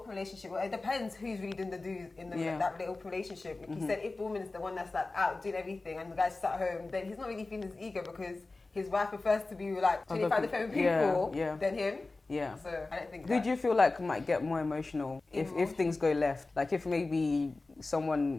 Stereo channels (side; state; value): right; quieter; 3.4 dB